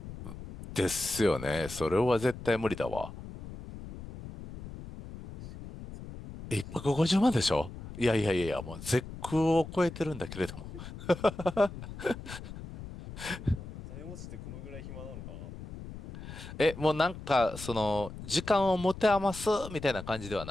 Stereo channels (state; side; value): noise; left; rumble, 12 dB below the sound